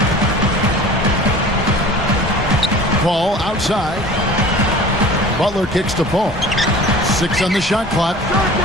Paul outside. Butler kicks to Paul. 6 on the shot clock.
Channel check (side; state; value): both; normal; correlation 0.42